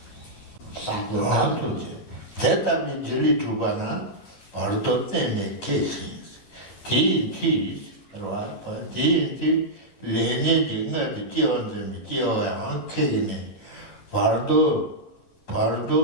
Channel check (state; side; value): late; right; 11 ms